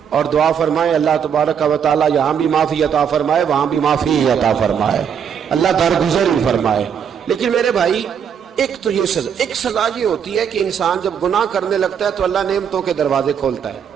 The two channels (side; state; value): left; quieter; 7.8 dB